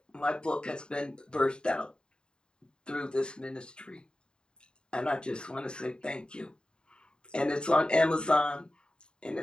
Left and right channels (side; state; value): right; late; 0.049 ms